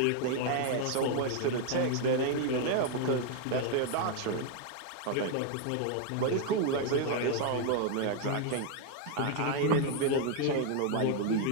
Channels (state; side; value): different; both; correlation 0.00